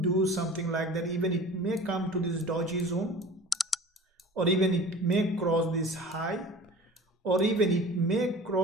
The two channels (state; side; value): normal; both; correlation 0.40